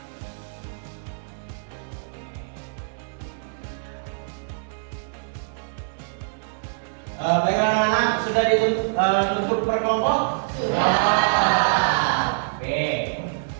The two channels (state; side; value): silent; left; 62 dB below the other